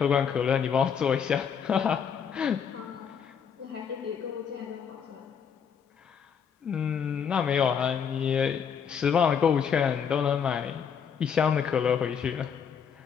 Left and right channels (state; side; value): quieter; right; 7.2 dB